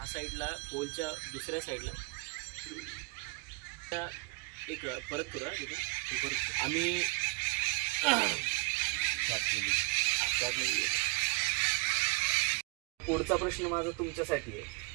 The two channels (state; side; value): quieter; left; 28.6 dB